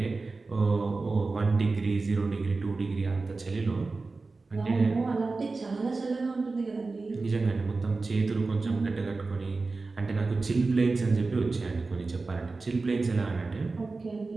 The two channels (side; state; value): left; quieter; 3.8 dB